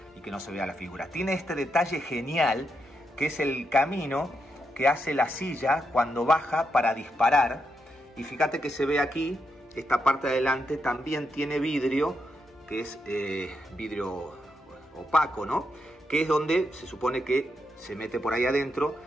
y que no se vea la figura. Tiene este detalle genial que es el camino que hace la silla cuando baja para disparar. Y fíjate que se ve aquí, esta parte de adelante también tiene vidrio, que es vidrio opaco, ¿no? Que es donde se supone que se mete por ahí adentro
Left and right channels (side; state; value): both; normal; correlation 0.83